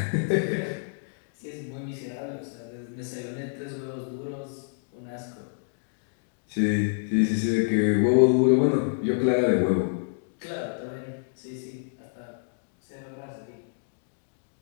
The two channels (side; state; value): right; silent; digital silence